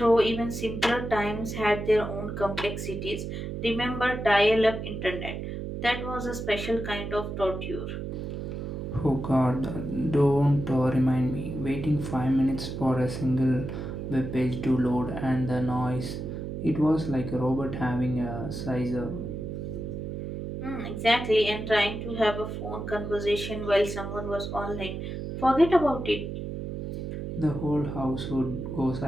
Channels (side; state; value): right; noise; hum, 6 dB below the sound